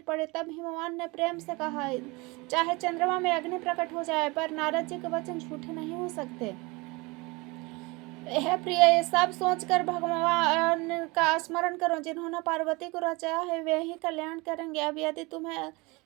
पड़े। तब हिमवान ने प्रेम से कहा, चाहे चंद्रमा में अग्नि प्रकट हो जाए, पर नारद जी के वचन झूठे नहीं हो सकते। हे प्रिय, ये सब सोचकर भगवान का स्मरण करो। जिन्होंने पार्वती को रचाया है वे ही कल्याण करेंगे। अब यदि तुम्हें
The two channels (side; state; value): left; quieter; 25.4 dB